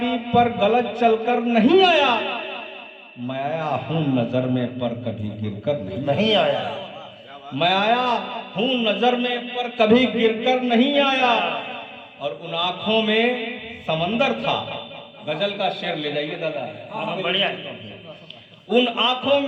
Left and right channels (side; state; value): both; identical; correlation 1.00